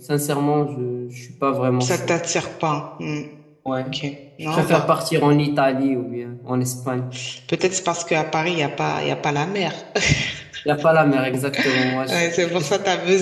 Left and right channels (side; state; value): both; identical; correlation 1.00